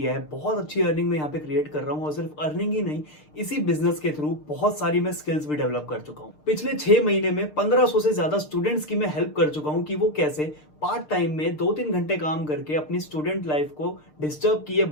है। बहुत अच्छी अर्निंग में यहाँ पे क्रिएट कर रहा हूँ और सिर्फ अर्निंग ही नहीं, इसी बिजनेस के थ्रू बहुत सारी मैं स्किल्स भी डेवलप कर चुका हूँ। पिछले 6 महीने में 1500 से ज्यादा स्टूडेंट्स की मैं हेल्प कर चुका हूँ कि वो कैसे पार्ट टाइम में 2-3 घंटे काम करके अपनी स्टूडेंट लाइफ को डिस्टर्ब किए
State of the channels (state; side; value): late; right; 6.6 ms